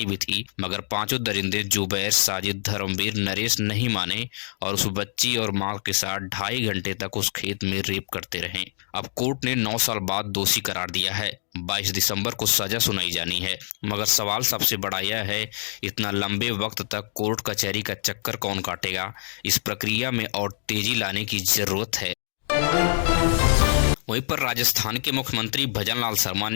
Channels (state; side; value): silent; right; digital silence